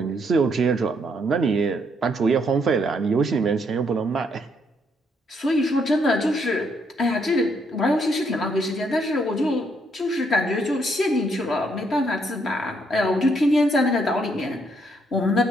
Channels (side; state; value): both; normal; correlation 0.73